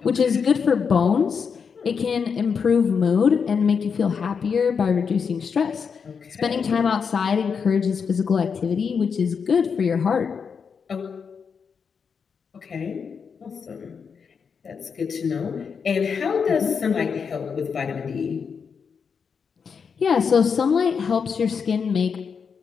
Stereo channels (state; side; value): quieter; right; 6.1 dB